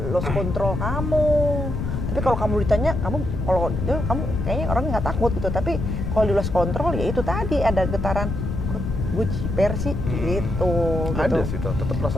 lost control kamu. Tapi kalau kamu ditanya, kamu kayaknya orangnya nggak takut gitu. Tapi kalau di lost control ya itu tadi ada getaran, kok gue ciper sih gitu. Ada sih, tetap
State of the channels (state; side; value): noise; left; rumble, 3 dB below the sound